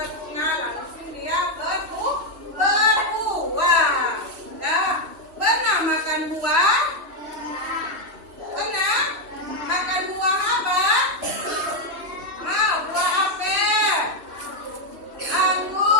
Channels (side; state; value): left; late; 3.1 ms